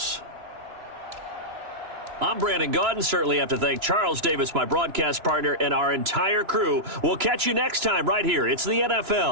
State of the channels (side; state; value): left; late; 3.0 ms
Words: I'm Brandon Gaudin. Certainly have to thank Charles Davis, my broadcast partner, and our entire crew. We'll catch you next time right here. It's the